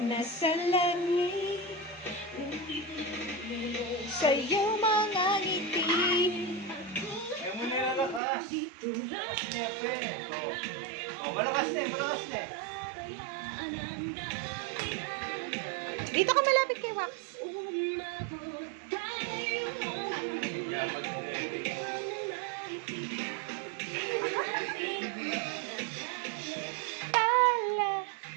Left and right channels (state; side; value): drops out; left; at 8.2 s